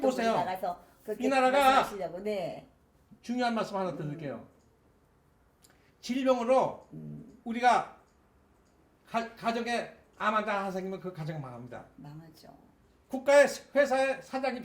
보세요. 나가서 그렇게 이 나라가 말씀하시려고. 네. 중요한 말씀 하나 드릴게요. 질병으로 우리가 가정에 암 환자 하나 생기면 그 가정 망합니다. 망하죠. 국가의 회사의 사장이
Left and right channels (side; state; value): both; identical; correlation 1.00